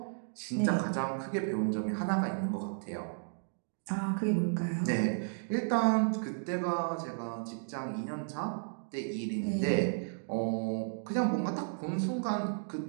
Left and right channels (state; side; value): silent; left; digital silence